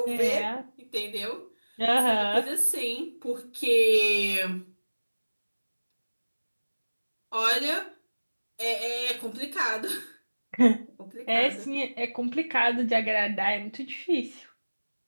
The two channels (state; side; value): inverted; both; correlation -1.00